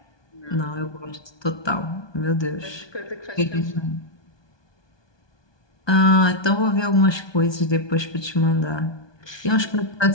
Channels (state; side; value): late; right; 1.2 ms